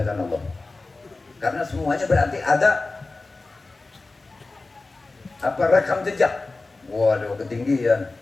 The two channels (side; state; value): right; quieter; 3.4 dB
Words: Allah. Karena semuanya berarti ada apa rekam jejak. Waduh, ketinggian.